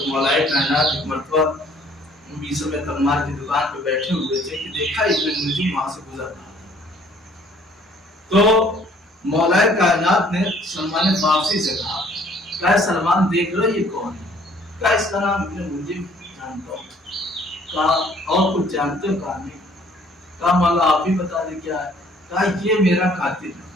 مولائے کائنات ایک مرتبہ بیسوں میں تمار کی دکان پہ بیٹھے ہوئے تھے کہ دیکھا ابن ملجم وہاں سے گزر رہا. تو مولائے کائنات نے سلمان فارسی سے کہا کہ سلمان دیکھ لو یہ کون ہے؟ کہا اس کا نام ابن ملجم جانتا ہوں. کہا اور کچھ جانتے ہو؟ کہا نہیں. کہا مولا آپ ہی بتا دیں کیا ہے؟ کہا یہ میرا قاتل ہے.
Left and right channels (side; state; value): both; normal; correlation 0.59